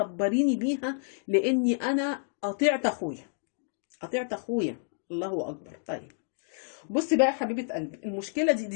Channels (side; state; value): right; silent; digital silence